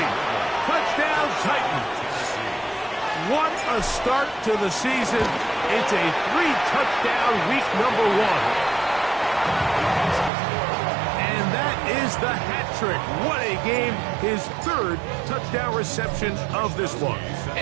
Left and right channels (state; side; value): drops out; left; at 10.3 s